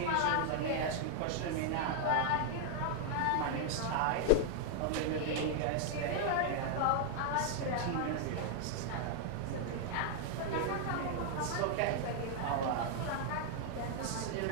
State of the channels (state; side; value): different; both; correlation 0.00